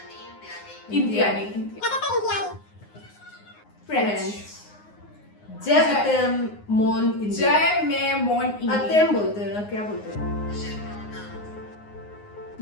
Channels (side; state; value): right; late; 9.6 ms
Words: इंडियानी फ्रेंच जय अतेम मोन इंडिया। जय में मोन इंडिया अतेम बोलते हैं ना, क्या बोलते हैं?